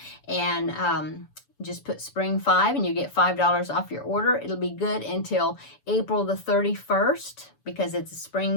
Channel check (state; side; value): late; right; 7.0 ms